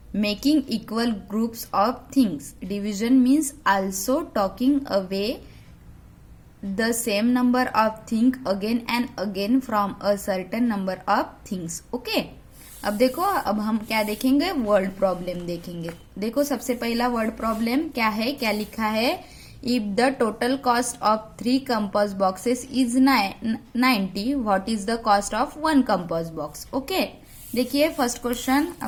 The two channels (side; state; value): both; identical; correlation 1.00